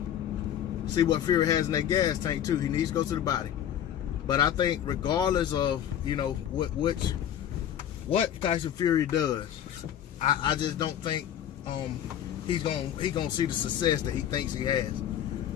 see what Fury has in that gas tank too. He needs to go to the body. But I think regardless of, you know, what Tyson Fury does, I just don't think he's gonna see the success that he thinks he has.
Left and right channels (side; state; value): right; quieter; 10.3 dB